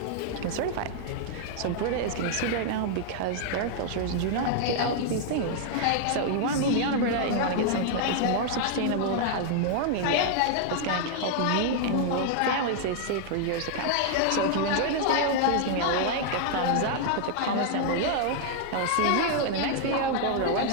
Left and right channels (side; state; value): both; different; correlation -0.01